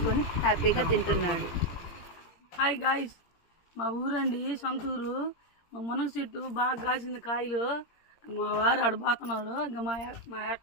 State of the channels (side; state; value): right; late; 17 ms